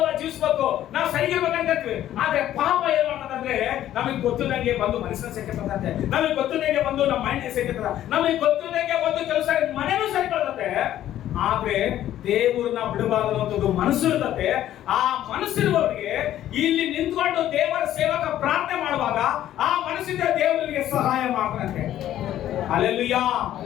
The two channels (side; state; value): right; quieter; 12.3 dB